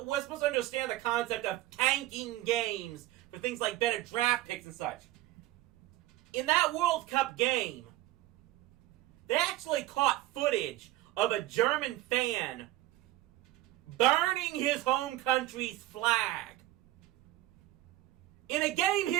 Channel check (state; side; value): quieter; left; 16.2 dB